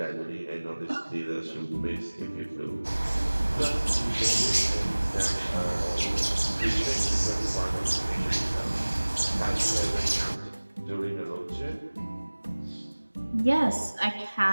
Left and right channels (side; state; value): both; inverted; correlation -1.00